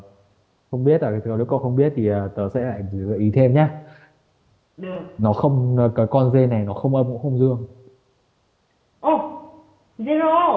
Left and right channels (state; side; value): identical; both; correlation 1.00